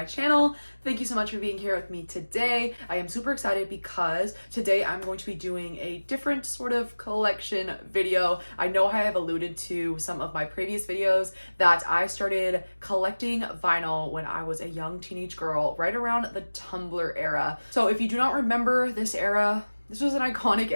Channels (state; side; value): inverted; both; correlation -1.00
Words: channel. Thank you so much for being here with me today. I am super excited because today I'm going to be doing a different sort of collection video. I know I have alluded to some of my previous videos that I started collecting vinyl when I was a young teenage girl, right around the Tumblr era. So if you do not remember this era, this was an iconic